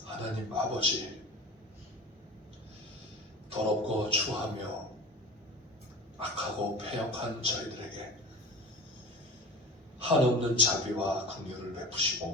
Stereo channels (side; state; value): both; normal; correlation 0.36